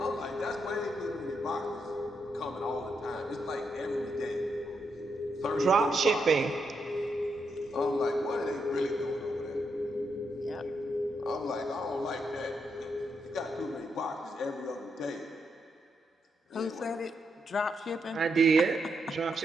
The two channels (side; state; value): both; normal; correlation 0.81